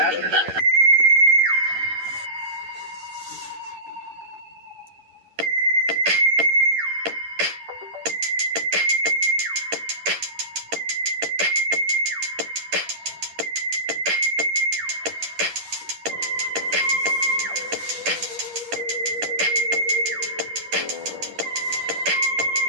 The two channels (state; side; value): late; left; 10 ms